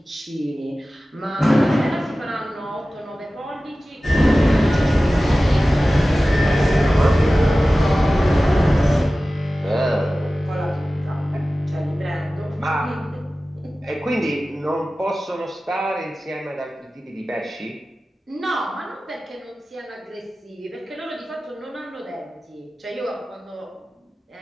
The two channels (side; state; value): both; normal; correlation 0.96